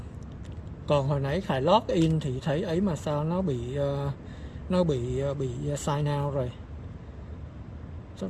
Còn hồi nãy Khải log in thì thấy ấy mà sao nó bị sign out rồi.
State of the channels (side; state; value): both; identical; correlation 1.00